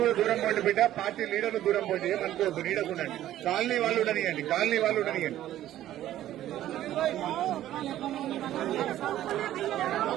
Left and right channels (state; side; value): quieter; left; 13.0 dB